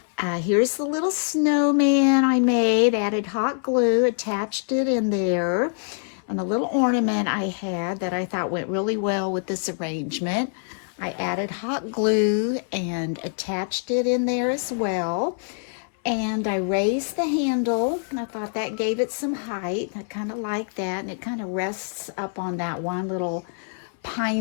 Here's the little snowman I made, added hot glue, attached it in there, and a little ornament I had that I thought went really well with this arrangement. I added hot glue and attached it in there as well. And I raised the handle, and I thought that gave it some height. I kind of like that, and it kind of rests up on that one little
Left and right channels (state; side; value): silent; right; 59 dB below the other